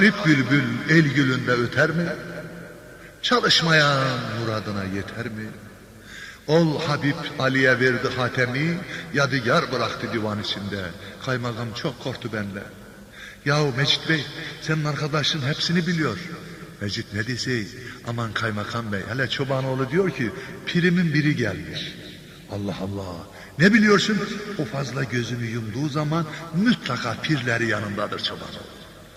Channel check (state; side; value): identical; both; correlation 1.00